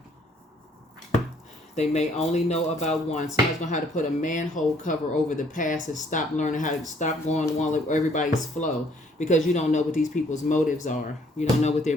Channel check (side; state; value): both; normal; correlation 0.63